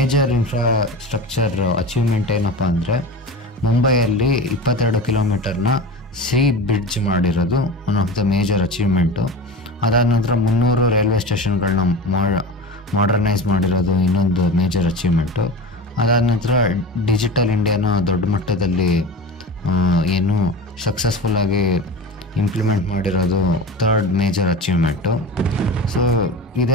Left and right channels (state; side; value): normal; both; correlation 0.31